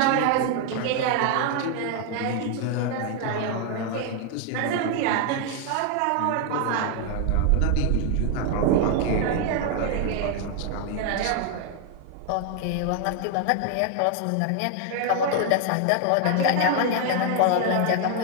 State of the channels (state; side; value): different; both; correlation 0.00